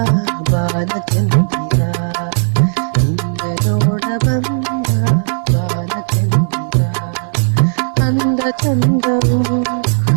ಬಾಲಚಂದಿರ, ನಿನ್ನ ನೋಡ ಬಂದ ಬಾಲಚಂದಿರ, ಅಂದ ಚಂದವು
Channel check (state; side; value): silent; left; digital silence